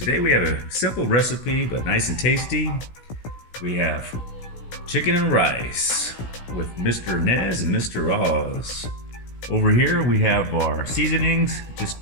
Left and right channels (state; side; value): late; right; 16 ms